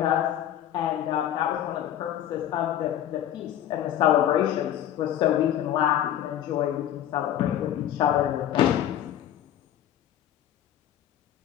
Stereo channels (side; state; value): right; quieter; 11.3 dB